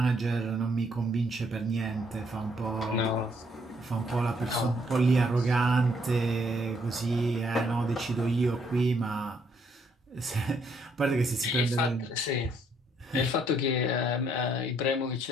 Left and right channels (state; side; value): normal; both; correlation 0.69